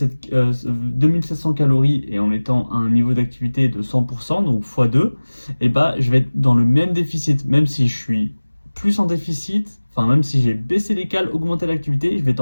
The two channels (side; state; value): both; inverted; correlation -1.00